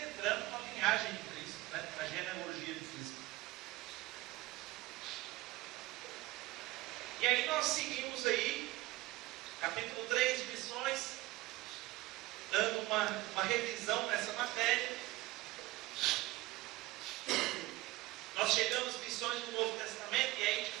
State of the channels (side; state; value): left; quieter; 19.2 dB